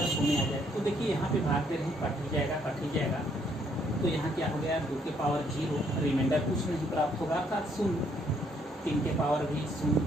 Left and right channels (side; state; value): both; normal; correlation 0.69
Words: 0 आ जाए तो देखिए यहाँ पे भाग दे रहे हैं, कट ही जाएगा। तो यहाँ क्या हो गया 2 के पावर 0, रिमाइंडर कुछ नहीं प्राप्त होगा, अर्थात 0। 3 के पावर भी 0,